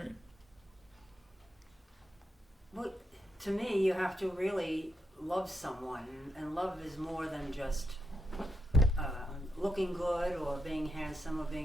Well, to me, you have to really love someone, and love is more than just looking good or being handsome or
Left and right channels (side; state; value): both; normal; correlation 0.84